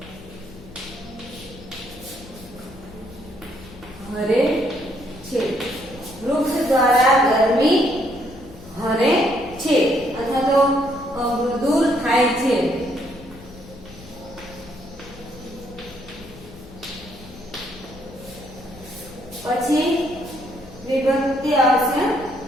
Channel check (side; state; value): left; noise; hum, 19 dB below the sound